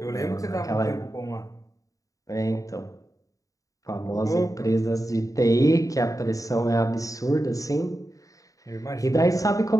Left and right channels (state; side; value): late; right; 0.16 ms